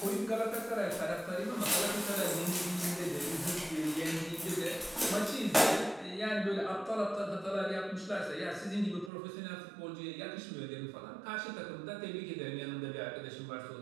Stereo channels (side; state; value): left; drops out; at 9.1 s